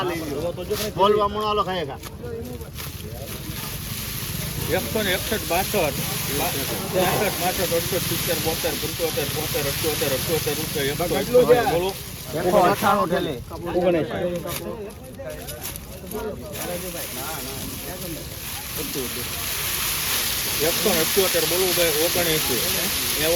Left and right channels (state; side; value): identical; both; correlation 1.00